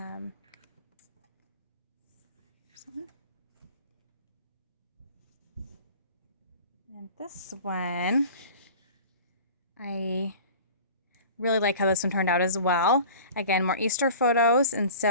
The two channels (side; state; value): both; inverted; correlation -0.41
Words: this one, I really like how this one turned out as well. Again, more Easter photos, and